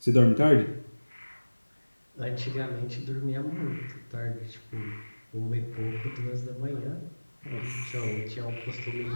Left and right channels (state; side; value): inverted; both; correlation -1.00